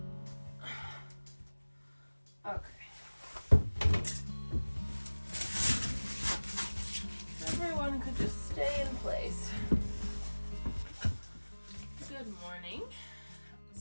Okay. Everyone could just stay in place. Good morning.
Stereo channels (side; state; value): both; inverted; correlation -1.00